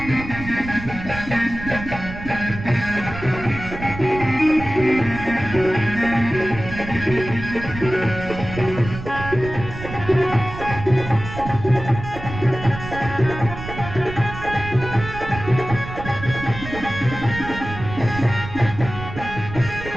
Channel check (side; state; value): right; noise; rumble, 10 dB below the sound